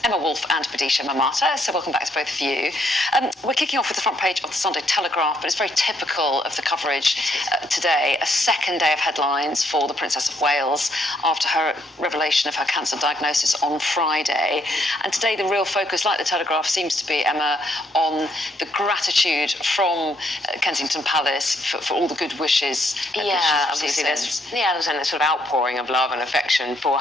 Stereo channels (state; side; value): normal; both; correlation 0.72